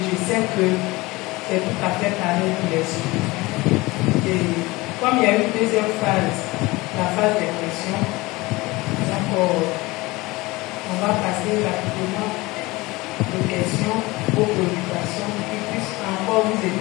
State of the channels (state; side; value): quieter; right; 21.7 dB